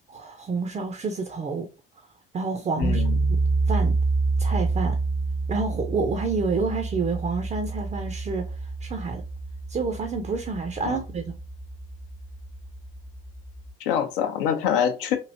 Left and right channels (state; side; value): normal; both; correlation 0.59